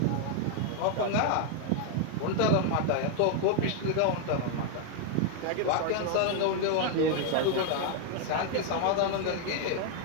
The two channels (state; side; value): different; both; correlation 0.00